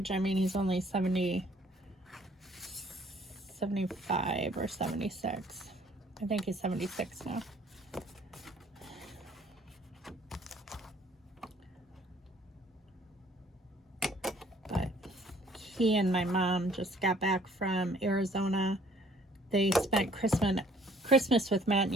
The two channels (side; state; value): both; normal; correlation 0.59